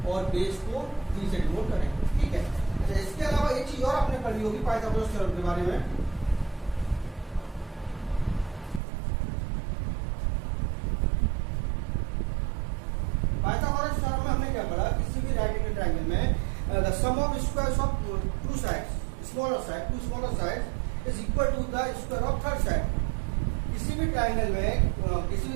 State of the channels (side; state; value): left; drops out; at 8.8 s